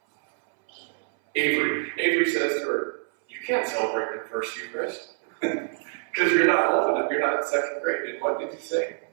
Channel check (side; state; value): left; silent; 61 dB below the other